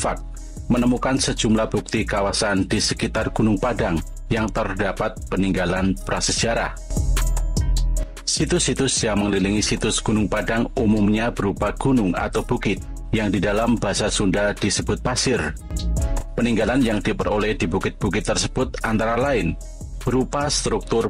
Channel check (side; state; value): both; identical; correlation 1.00